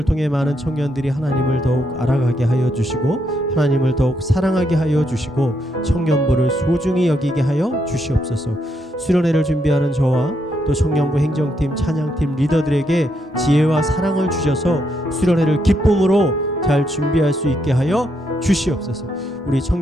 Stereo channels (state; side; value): normal; both; correlation 0.77